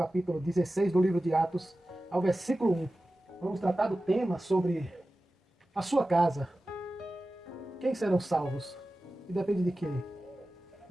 16 do livro de Atos, ao versículo 1. Vamos tratar do tema sobre a sua casa. Quem serão salvos? E depende de quê?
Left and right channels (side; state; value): both; normal; correlation 0.95